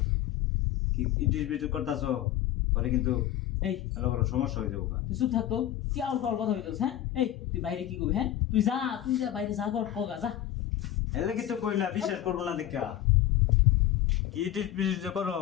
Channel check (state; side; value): quieter; right; 12.7 dB